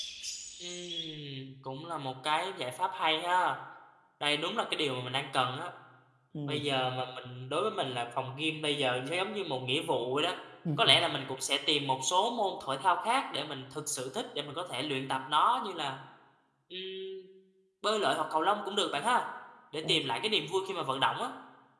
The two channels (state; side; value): identical; both; correlation 1.00